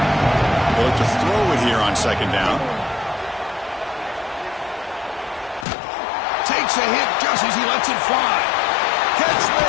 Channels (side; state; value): right; drops out; at 5.7 s